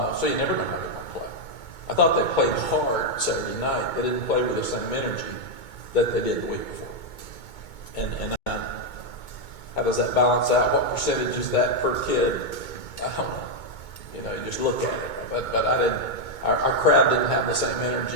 So you never know how they're going to play. I thought they played hard Saturday night. They didn't play with the same energy that they did the week before. And how does that balance out? What percentage is that per kid? I don't know. You just look at it. But I didn't. Our crowd didn't have the same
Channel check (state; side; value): late; right; 2.2 ms